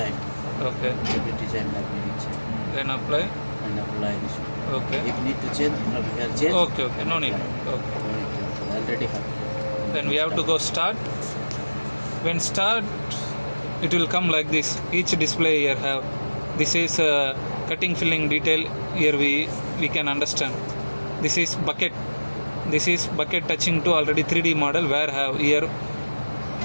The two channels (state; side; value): inverted; both; correlation -1.00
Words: Okay. The design that we need change. Then apply. And apply this one. Okay. If need to change, from here change. Okay. Okay. No need. Okay. Already have. Then we have to go start. When start, it will come like this. Each display here have. This is cutting filling detail. Here we can understand. This is bucket. This is bucket touching to already 3D model where have here